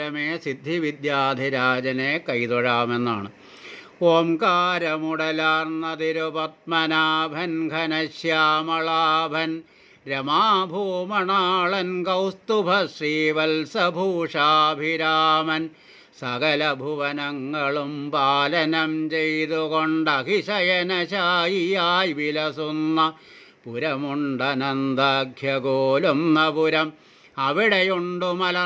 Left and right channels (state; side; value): identical; both; correlation 1.00